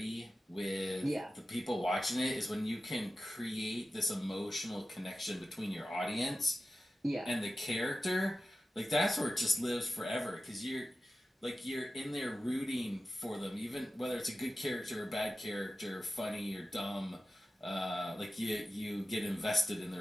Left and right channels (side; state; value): both; normal; correlation 0.94